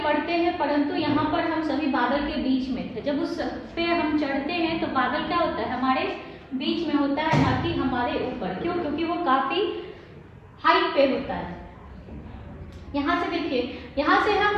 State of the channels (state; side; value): identical; both; correlation 1.00